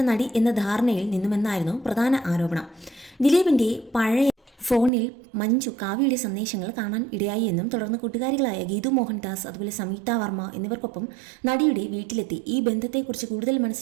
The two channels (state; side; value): drops out; left; at 4.9 s